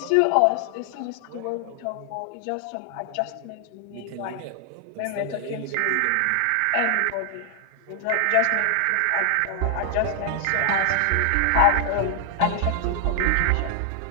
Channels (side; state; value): both; different; correlation 0.00